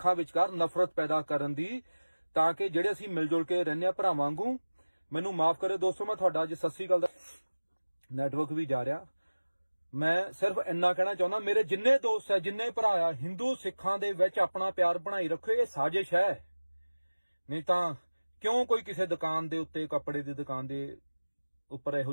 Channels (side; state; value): both; inverted; correlation -1.00